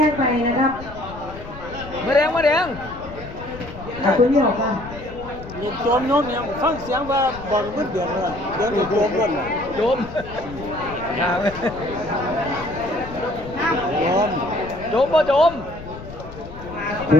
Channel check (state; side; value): noise; left; rumble, 14 dB below the sound